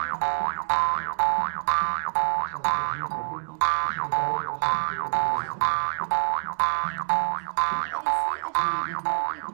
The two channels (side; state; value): left; silent; digital silence